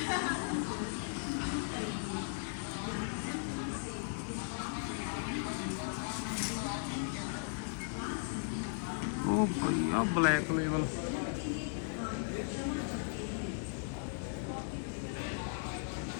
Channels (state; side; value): silent; right; digital silence